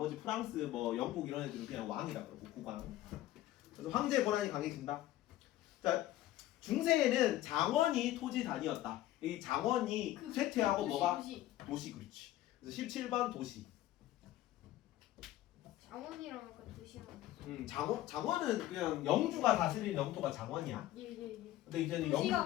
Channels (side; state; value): right; quieter; 14.6 dB